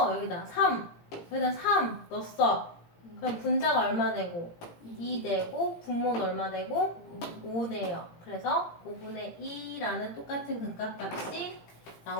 여기다 3 여기다 3 넣었어. 그럼 분자가 얼마 되고 2 되고 분모는 얼마 되고 5 돼요. 그래서 5분의 2라는 똑같은 극각값이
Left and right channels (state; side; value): late; right; 18 ms